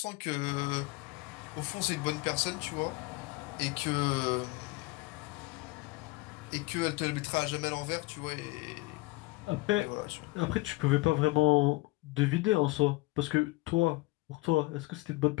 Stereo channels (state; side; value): quieter; right; 22.0 dB